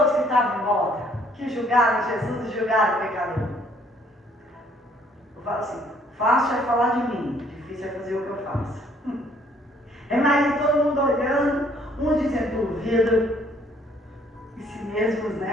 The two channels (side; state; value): both; normal; correlation 0.63